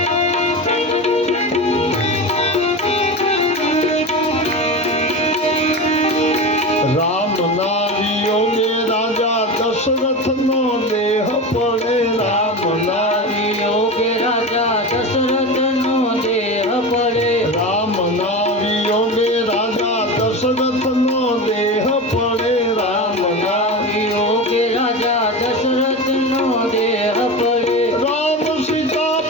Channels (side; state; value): both; normal; correlation 0.25